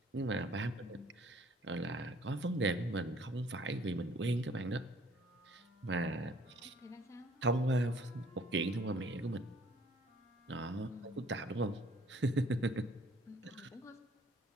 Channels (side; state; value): both; normal; correlation 0.58